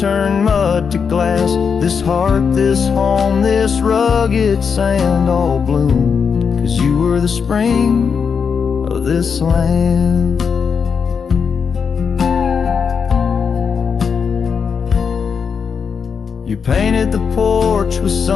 mud to glass. This heart, this home, this rugged sand all bloomed 'cause you were the spring of this land. You painted the porch with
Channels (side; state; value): right; quieter; 6.2 dB